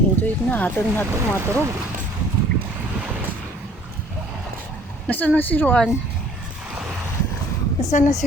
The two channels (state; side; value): normal; both; correlation 0.55